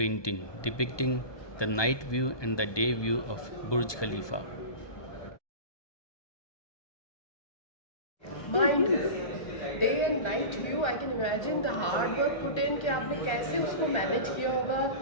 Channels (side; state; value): right; late; 1.2 ms